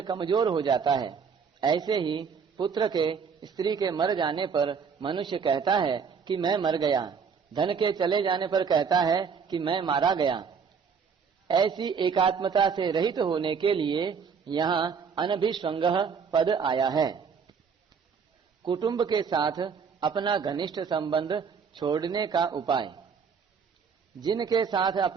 कमजोर हो जाता है, ऐसे ही पुत्र के स्त्री के मर जाने पर मनुष्य कहता है कि मैं मर गया, धन के चले जाने पर कहता है कि मैं मारा गया। ऐसी एकात्मता से रहित होने के लिए यहाँ अनभिष्वंगः पद आया है। कुटुंब के साथ अपना घनिष्ठ संबंध छोड़ने का उपाय। जिनके साथ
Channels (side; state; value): left; quieter; 6.2 dB